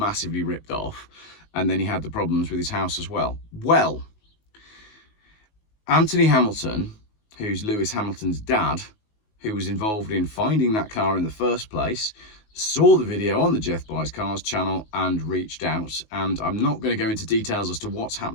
ripped off. And then he had the problems with his house as well. Well, Anthony Hamilton, who's Lewis Hamilton's dad, who was involved in finding that car in the first place, saw the video on the Jeff Buys Cars channel and reached out. And I'm not going to go into details as to what's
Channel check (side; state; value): right; late; 19 ms